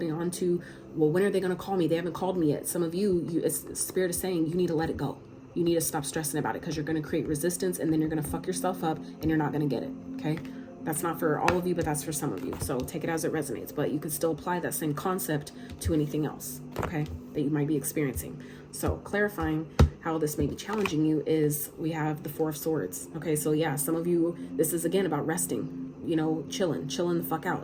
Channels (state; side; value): identical; both; correlation 1.00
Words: well, when are they going to call me? They haven't called me yet. Some of you, Spirit is saying you need to let it go. You need to stop stressing about it, because you're going to create resistance, and then you're going to fuck yourself up, and you're not going to get it. Okay. That's not for all of you, but that's for some of you. So take it as it resonates, but you could still apply that same concept to anything else, okay, that you might be experiencing. So clarifying how this may be challenging you is we have the Four of Swords. Okay, so yeah, some of you, this is again about resting, you know, chilling the fuck